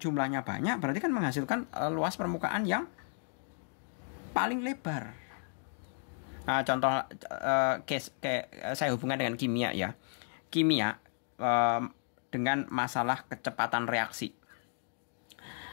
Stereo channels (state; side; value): silent; right; 55 dB below the other